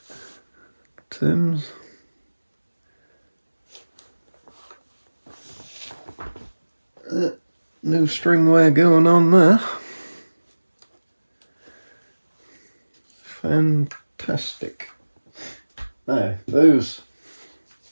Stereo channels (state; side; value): inverted; both; correlation -1.00